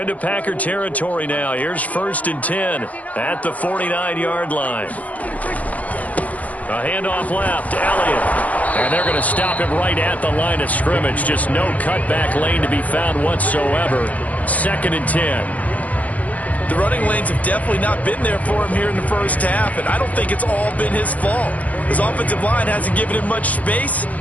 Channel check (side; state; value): right; late; 0.072 ms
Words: Packer territory now. Here's 1st and 10 at the 49-yard line. A handoff left, Elliott. And they're going to stop him right at the line of scrimmage. Just no cutback lane to be found whatsoever. 2nd and 10. The running lanes have definitely not been there for him here in the first half, and I don't think it's all been his fault. His offensive line hasn't given him much space.